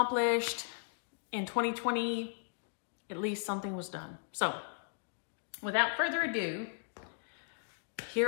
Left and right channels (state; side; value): silent; right; digital silence